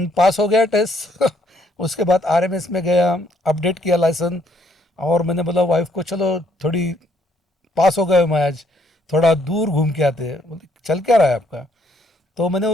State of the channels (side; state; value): both; normal; correlation 0.69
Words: पास हो गया टेस्ट। उसके बाद आरएमएस में गया, अपडेट किया लाइसेंस। और मैंने बोला वाइफ को चलो थोड़ी, पास हो गए मैं आज, थोड़ा दूर घूम के आते हैं। बोले चल क्या रहा है आपका? तो मैंने